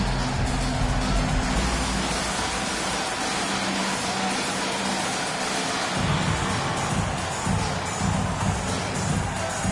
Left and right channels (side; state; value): both; identical; correlation 1.00